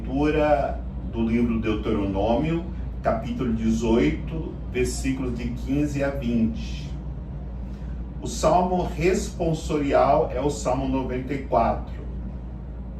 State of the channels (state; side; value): identical; both; correlation 1.00